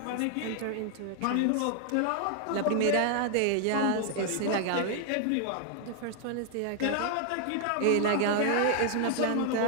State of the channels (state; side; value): different; both; correlation 0.00